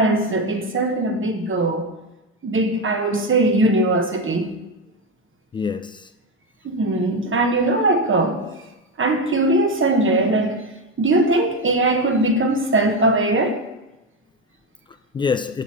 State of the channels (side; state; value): both; normal; correlation 0.12